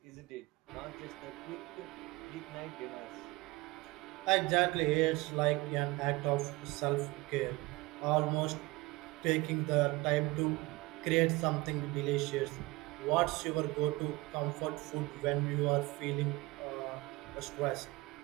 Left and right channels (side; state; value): left; quieter; 22.0 dB